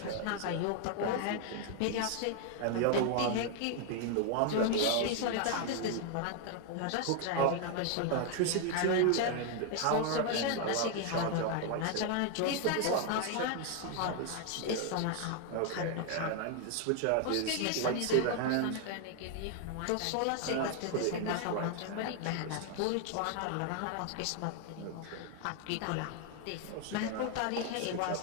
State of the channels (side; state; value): both; different; correlation 0.00